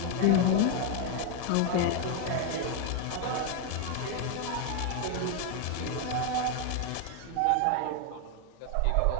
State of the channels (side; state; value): both; different; correlation 0.01